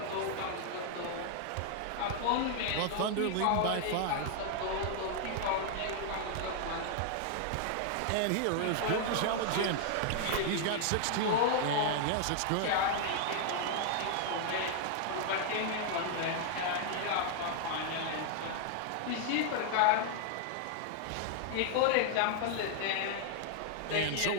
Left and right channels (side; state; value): both; different; correlation 0.00